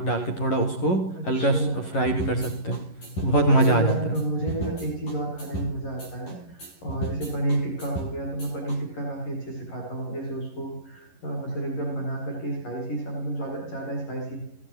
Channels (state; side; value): late; right; 11 ms